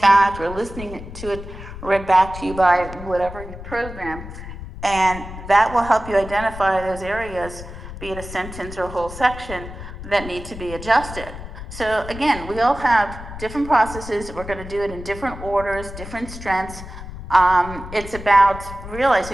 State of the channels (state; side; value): noise; left; rumble, 12 dB below the sound